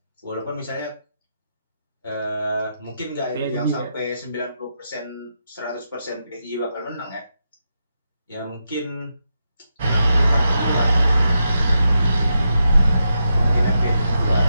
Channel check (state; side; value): inverted; both; correlation -0.85